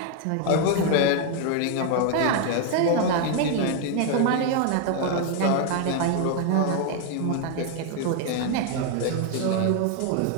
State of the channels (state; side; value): different; both; correlation 0.00